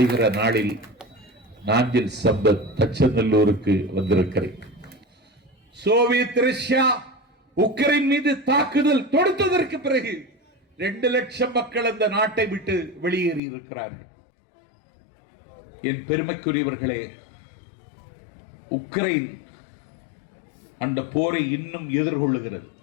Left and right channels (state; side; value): drops out; right; at 13.4 s